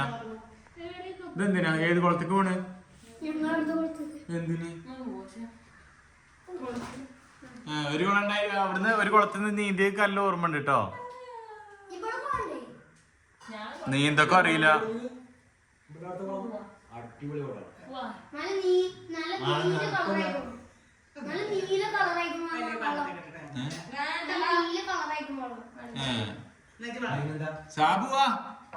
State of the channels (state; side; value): identical; both; correlation 1.00